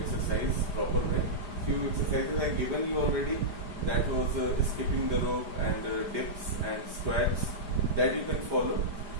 proper way. Few exercises I given you already. That was skipping the rope and dips and squats, that you can follow,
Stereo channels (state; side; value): late; left; 4.9 ms